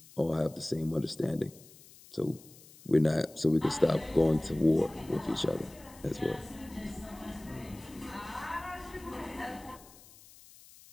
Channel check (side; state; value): left; noise; hiss, 22 dB below the sound